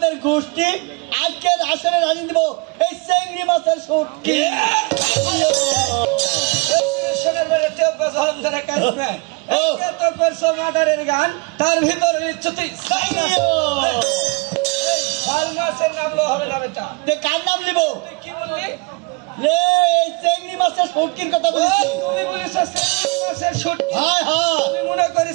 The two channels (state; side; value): quieter; left; 28.5 dB